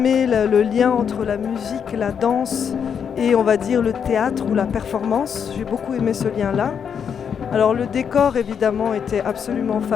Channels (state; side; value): quieter; right; 7.4 dB